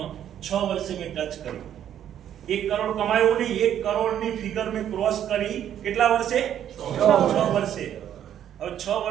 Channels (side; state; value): left; quieter; 10.3 dB